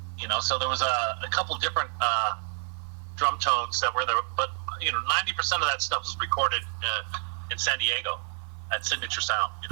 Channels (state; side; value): silent; left; 59 dB below the other